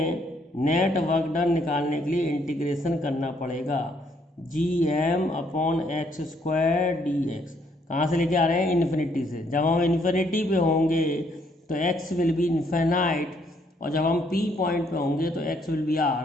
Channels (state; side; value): normal; both; correlation 0.69